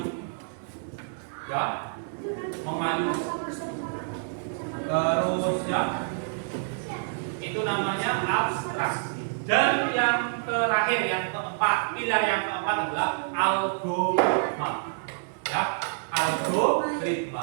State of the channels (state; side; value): silent; left; digital silence